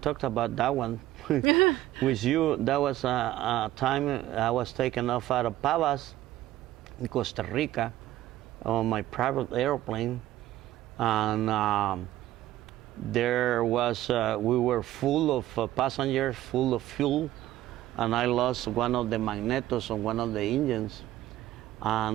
talked about that one with you. That was a time I was taken off out of Pavas in Costa Rica on my private airplane, and there was we were full of passengers, full of fuel, and I lost one of the magnetos on one of the engines,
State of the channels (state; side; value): quieter; left; 14.4 dB